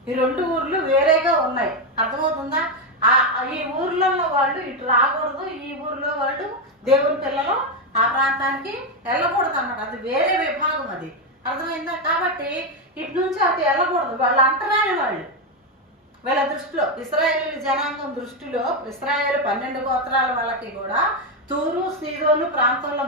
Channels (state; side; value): normal; both; correlation 0.06